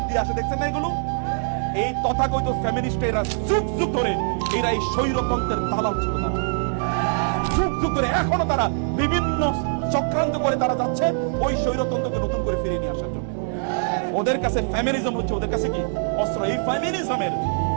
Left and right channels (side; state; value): left; silent; digital silence